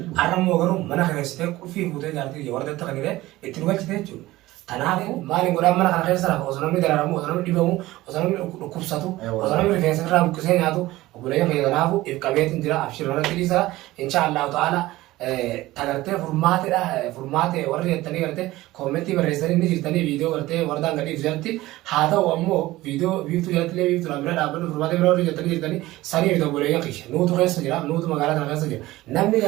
arrammoo garuu mana keessatee qulfii fuutee jaartii wardeetta kan jedhee itti dhugachite jechuudha. Kanaafuu maaliin godhaan mana kana keessa lafa osoo namni dararamu osoo namni dhibamu osoo namni dhukkubsatu osoo namni rifeensa irraa buqqisee nyaatu obboleeyyan keenya kanaafuu if qabeetiin jira abshirmanatti dhiisaa insha Allahu ta'ala tagartee furmaate warri jettanii gartee koomentii barreessanii ni jirtanii viidiyoo gartee wardaan gadhiif jirti haa ta'u ammoo viidiyoo biiftuu jalatti biiftuu bira dhaabbatu furmaate bira warri jettanii jirtanii sanii fi obboleeyyan keenya nuutu keessa jira nuutu magaalaa kana keessa jira namni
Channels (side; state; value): left; quieter; 17.6 dB